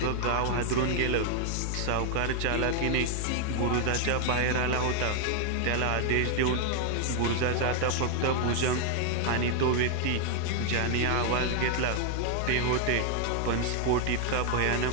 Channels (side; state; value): both; different; correlation 0.00